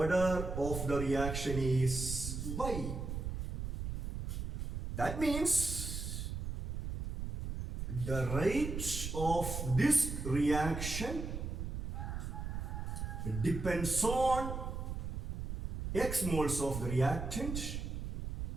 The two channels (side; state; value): right; noise; rumble, 4 dB below the sound